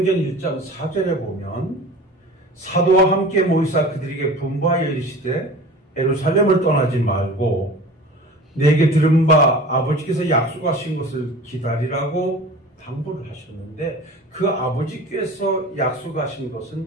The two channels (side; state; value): both; normal; correlation 0.39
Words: 1장 4절에 보면 사도와 함께 모이사 그들에게 분부하여 이르시되 예루살렘을 떠나지 말고 내게 들은 바 아버지께서 약속하신 것을 기다리라고 당부를 하셨는데 그 아버지께서 약속하신